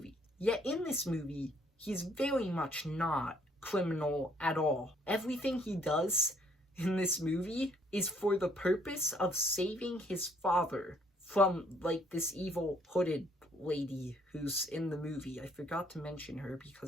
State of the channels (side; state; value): both; normal; correlation 0.64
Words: Yet in this movie, he's very much not criminal at all. Everything he does in this movie is for the purpose of saving his father from, like, this evil hooded lady who's in the movie. I forgot to mention her